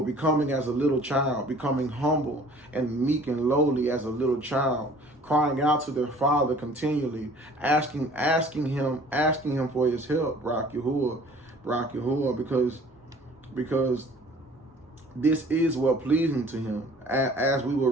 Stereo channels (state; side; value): normal; both; correlation 0.51